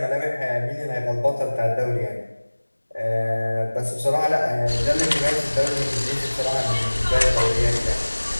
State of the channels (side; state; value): both; inverted; correlation -1.00